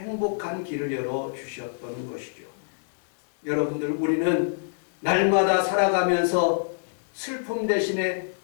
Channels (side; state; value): right; silent; digital silence